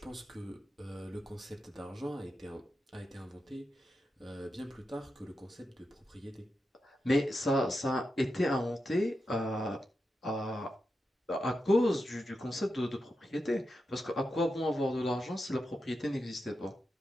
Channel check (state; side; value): normal; both; correlation 0.88